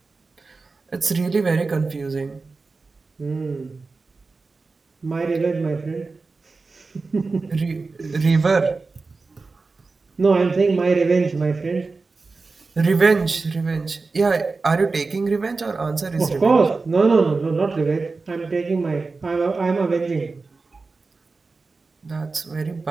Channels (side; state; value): left; quieter; 4.0 dB